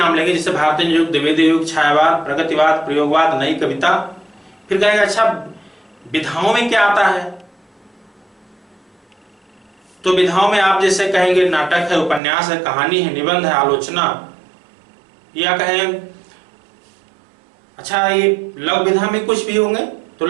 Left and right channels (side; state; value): left; drops out; at 12.2 s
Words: लेंगे, जैसे भारतीय युग, द्विवेदी युग, छायावाद, प्रगतिवाद, प्रयोगवाद, नई कविता। फिर कहेंगे अच्छा विधाओं में क्या आता है, तो विधाओं में आप जैसे कहेंगे नाटक है, उपन्यास है, कहानी है, निबंध है, आलोचना, या कहें अच्छा ये लघु विधा में कुछ भी होंगे, तो